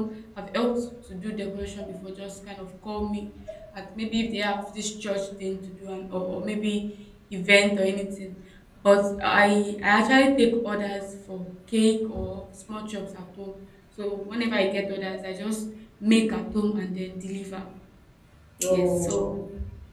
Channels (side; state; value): both; identical; correlation 1.00